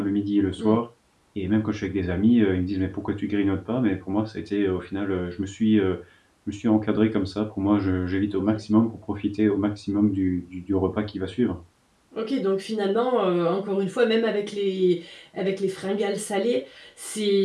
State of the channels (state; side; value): identical; both; correlation 1.00